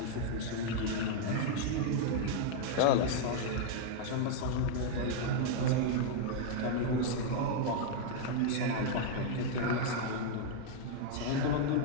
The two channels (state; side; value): different; both; correlation 0.00